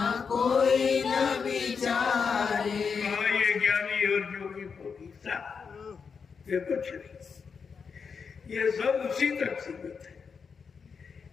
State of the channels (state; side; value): quieter; right; 5.8 dB